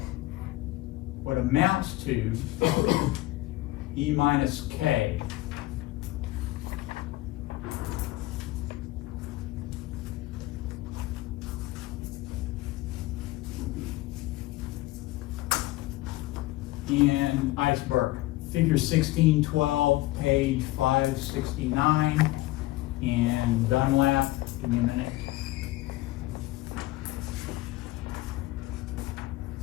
what amounts to E minus K in Iceberg. Figure 1612, page 569, and Dunlap, give me a minute.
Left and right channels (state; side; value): quieter; right; 18.3 dB